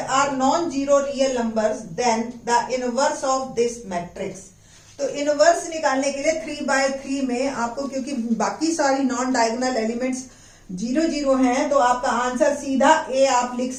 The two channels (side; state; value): both; identical; correlation 1.00